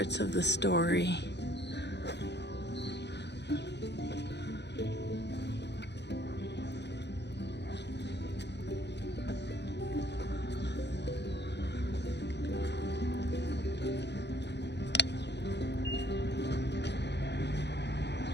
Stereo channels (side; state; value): right; late; 0.50 ms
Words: of the story.